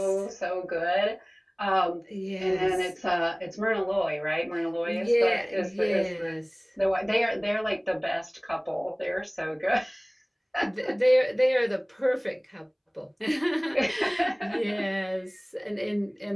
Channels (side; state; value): both; identical; correlation 1.00